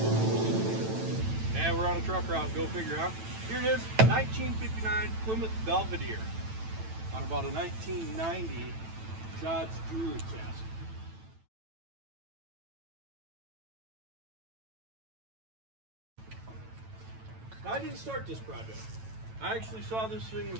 We're on a truck route, go figure out. Here it is, 1959 Plymouth Belvedere on about a 1990 Dodge Jewelry chassis. Now, I didn't start this project. I actually saw this thing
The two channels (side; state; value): left; late; 9.0 ms